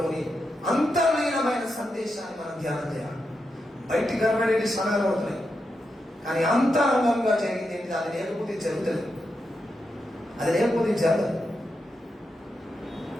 అంతర్లీనమైన సందేశాన్ని మనం ధ్యానం చేయాలి. బయటికి కనబడేది క్షణాలు అవుతున్నాయి, కానీ అంతరంగంగా జరిగింది ఏంటి? అది లేకపోతే జరుగుతుంది, అది లేకపోతే జరగదు.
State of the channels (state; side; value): normal; both; correlation 0.86